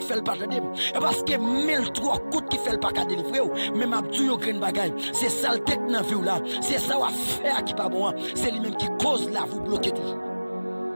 fait le pas de et parce que 1003 coups qui fait le pas de délivrer même abdou grain bagaille c'est ça le tête dans vie là c'est ça à faire qui pas bon c'est lui même qui cause là vous bloquez toujours.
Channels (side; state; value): both; inverted; correlation -1.00